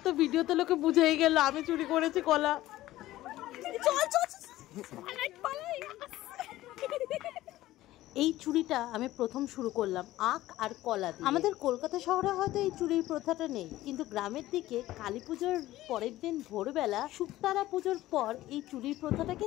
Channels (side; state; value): right; quieter; 15.8 dB